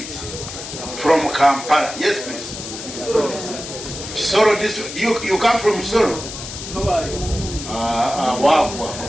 from Kampala? Yes, please. Soro. You come from Soro? Wow.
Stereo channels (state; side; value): noise; left; hiss, 9 dB below the sound